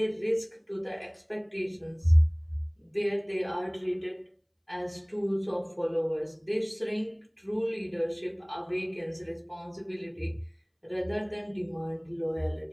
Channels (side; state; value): both; identical; correlation 1.00